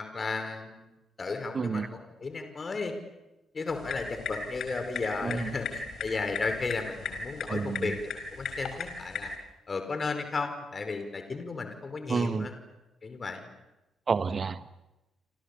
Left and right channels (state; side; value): normal; both; correlation 0.84